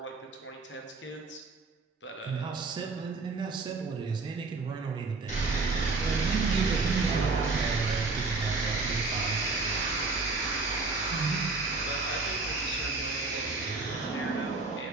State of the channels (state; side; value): quieter; left; 3.8 dB